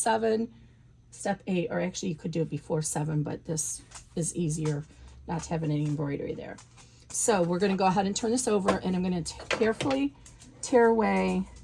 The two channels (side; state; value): both; identical; correlation 1.00